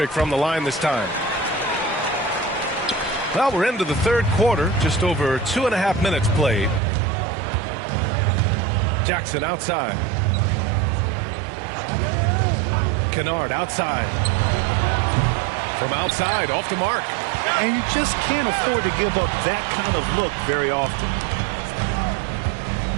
from the line this time. Well, we're into the third quarter, just over 2.5 minutes played. Jackson outside. Kennard outside. From outside, off the mark. And you just can't afford to give up that kind of look very often.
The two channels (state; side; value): drops out; left; at 6.8 s